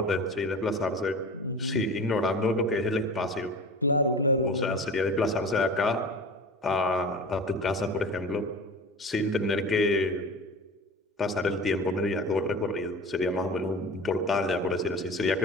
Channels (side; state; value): both; normal; correlation 0.35